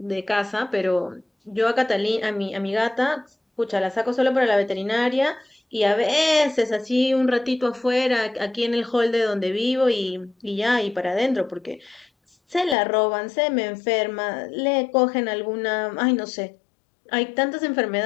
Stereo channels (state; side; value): drops out; right; at 12.8 s